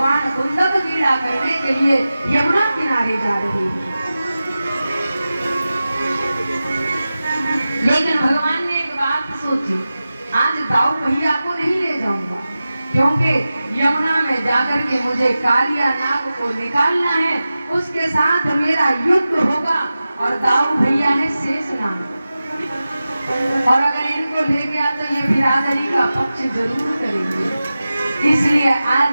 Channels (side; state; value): both; inverted; correlation -0.94